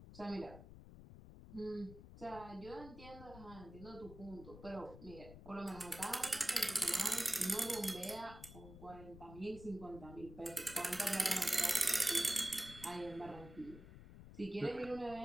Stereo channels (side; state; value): left; noise; rumble, 15 dB below the sound